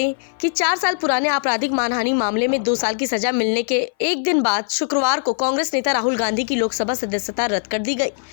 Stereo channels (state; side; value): silent; right; 59 dB below the other